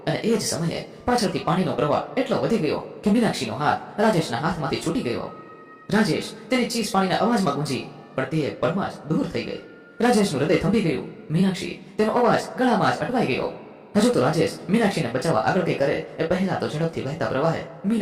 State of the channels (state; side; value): identical; both; correlation 1.00